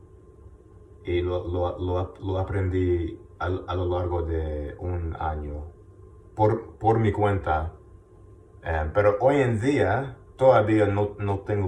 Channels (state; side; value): identical; both; correlation 1.00